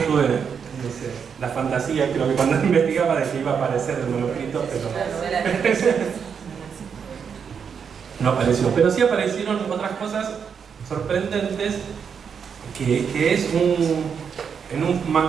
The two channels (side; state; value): left; quieter; 6.8 dB